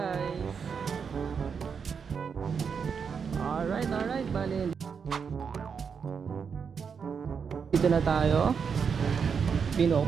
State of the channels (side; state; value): left; quieter; 6.3 dB